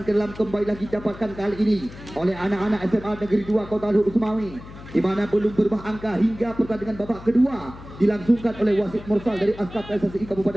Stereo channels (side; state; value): left; noise; hum, 16 dB below the sound